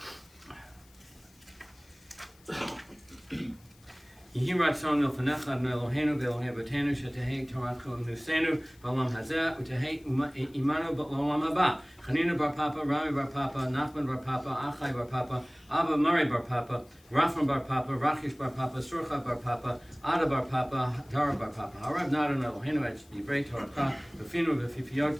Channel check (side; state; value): left; noise; hiss, 29 dB below the sound